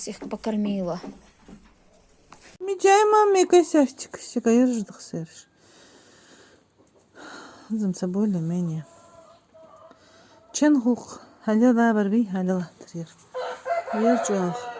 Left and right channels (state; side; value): identical; both; correlation 1.00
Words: их покормила. Мечай, маме, косячек, щекаешь, дохсерш. Замца более-менее. Ченгух, ходила барби, ходила трир. Верчах,